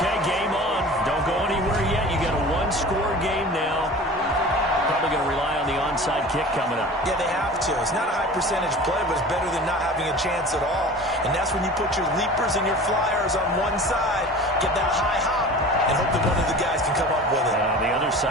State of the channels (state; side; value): normal; both; correlation 0.39